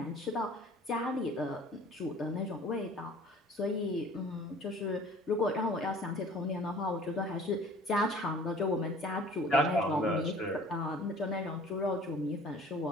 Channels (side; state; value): both; normal; correlation 0.49